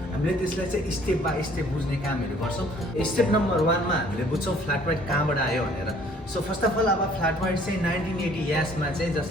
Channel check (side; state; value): both; normal; correlation 0.58